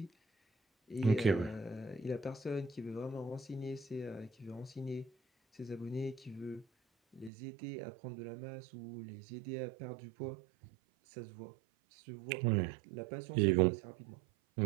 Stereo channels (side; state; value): left; drops out; at 7.3 s